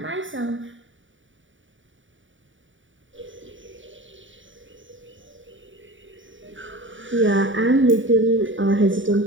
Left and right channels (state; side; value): late; left; 0.56 ms